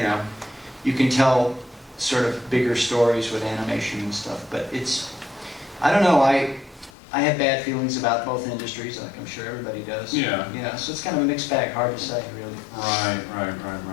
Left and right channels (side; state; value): right; drops out; at 6.9 s